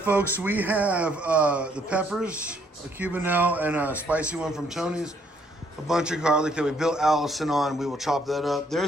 we have the peppers, a Cubanelle, and a spicy one from Tony's. A bunch of garlic that we built Allison on. We will chop that up.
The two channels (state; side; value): normal; both; correlation 0.67